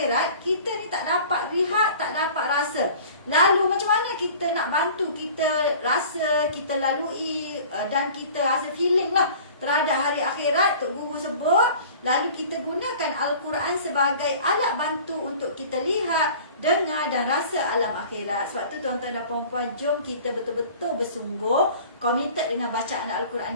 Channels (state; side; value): inverted; both; correlation -0.45